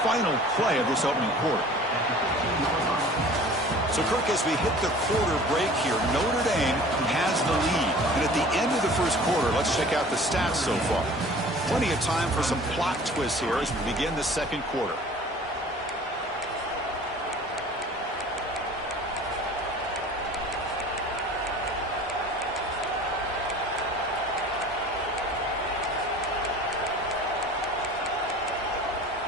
final play of this opening quarter. So, Kirk, as we hit the quarter break here, Notre Dame has the lead. And at the end of the first quarter, let's check out the stats so far. Plenty of time for some plot twists here as we begin the second quarter.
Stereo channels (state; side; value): normal; both; correlation 0.45